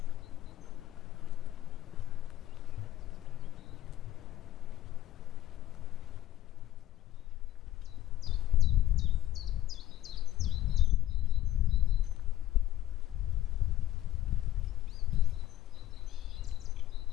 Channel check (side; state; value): right; quieter; 13.3 dB